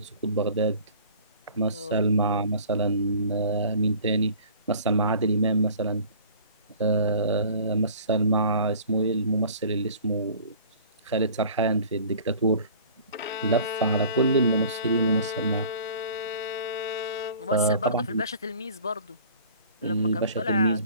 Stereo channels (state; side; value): inverted; both; correlation -0.46